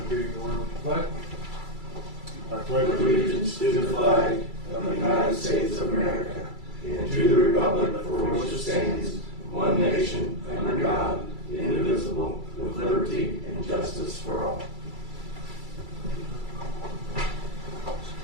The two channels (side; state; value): left; late; 2.3 ms